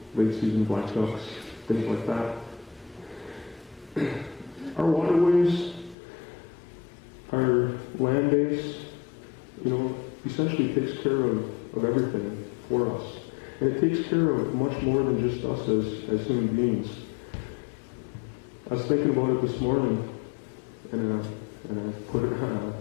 late season black ducks, things like that. Our waterways, our land base, essentially takes care of everything for us. And it takes care of much more than just us as human beings. I was thinking about it this morning, and I put it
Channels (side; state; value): right; drops out; at 6.0 s